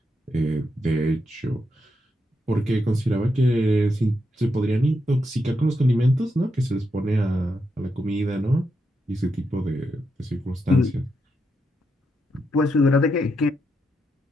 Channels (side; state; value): both; normal; correlation 0.83